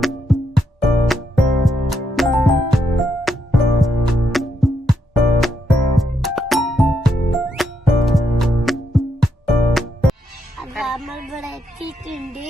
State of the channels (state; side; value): normal; both; correlation 0.80